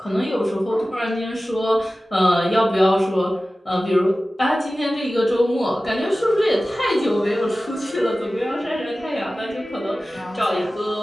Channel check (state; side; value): normal; both; correlation 0.96